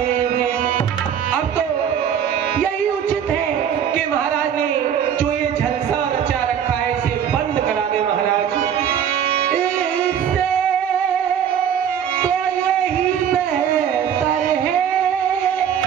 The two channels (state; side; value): quieter; left; 8.8 dB